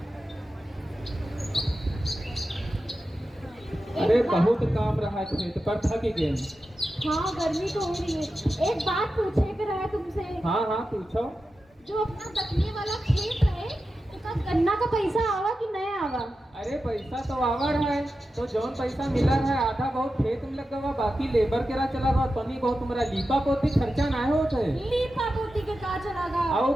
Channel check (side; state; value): both; normal; correlation 0.91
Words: अरे बहुत काम रहा है खेत पर, थक गए। हाँ गर्मी तो हो रही है। एक बात पूछे कर है तुमसे। हाँ हाँ पूछो। जो अपना दखने वाला खेत है उसका गन्ना का पैसा आवा कि नहीं आवा? अरे पैसा तो आवर है, तो जौन पैसा मिला है आधा बहुत खेत में लगा हुआ, बाकी लेबर के रहा चला गया। तनी बहुत तुम्हारा लीपा पोती खर्चा ना होता है। लीपा पोती के का चला गा? आओ